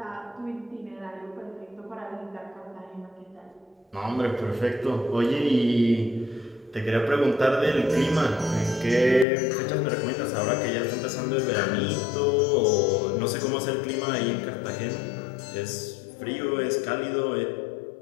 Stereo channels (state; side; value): drops out; right; at 9.2 s